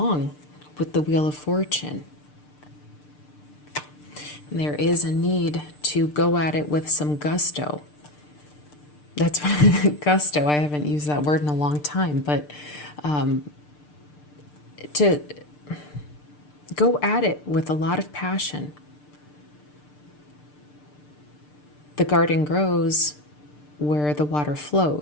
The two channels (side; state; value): right; late; 6.7 ms